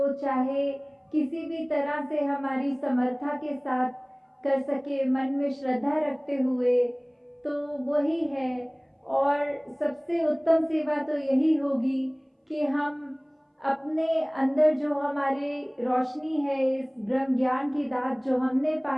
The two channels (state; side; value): identical; both; correlation 1.00